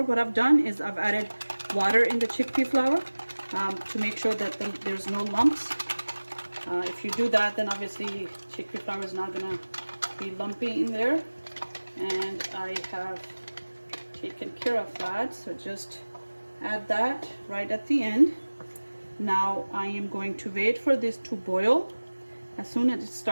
What I've done is I've added water in the chickpea flour to make sure that there's no lumps. If you do that, then obviously chickpea flour is not gonna be lumpy in there, and I have taken care of that. So just add that right at the end. Now I am going to wait for this to boil. As soon as it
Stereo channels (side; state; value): both; inverted; correlation -1.00